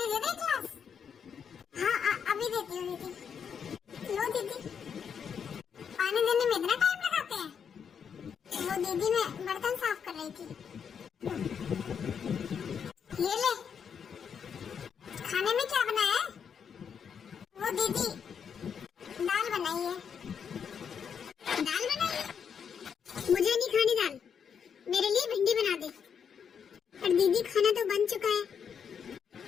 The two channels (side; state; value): right; quieter; 7.2 dB